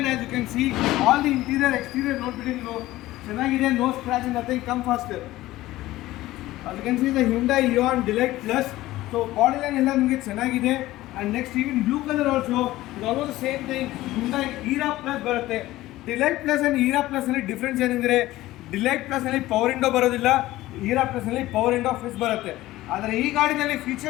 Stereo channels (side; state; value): right; quieter; 16.7 dB